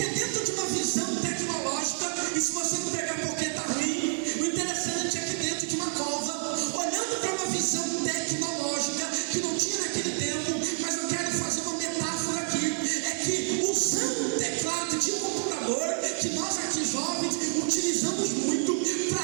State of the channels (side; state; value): left; silent; digital silence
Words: dentro de uma visão tecnológica, e se você não pregar porque está ruim, o interessante é que dentro de uma cova, olhando para uma visão tecnológica que não tinha naquele tempo, mas eu quero fazer uma metáfora aqui, é que usando um teclado de computador, que nós aqui jovens utilizamos muito